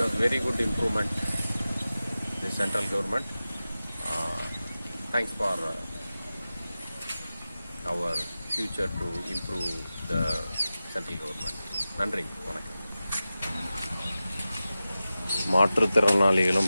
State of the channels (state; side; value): inverted; both; correlation -0.94